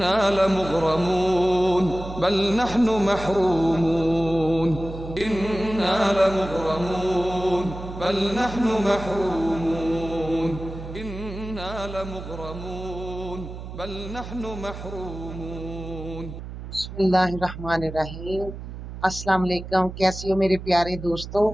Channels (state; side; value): noise; right; hum, 10 dB below the sound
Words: लमुग़रमून बल नहनु महरूमून। इन्ना लमुग़रमून बल नहनु महरूमून। इन्ना लमुग़रमून बल नहनु महरूमून। बिस्मिल्लाहिर्रहमानिर्रहीम। अस्सलाम वालेकुम। कैसी हो मेरे प्यारे दोस्तों।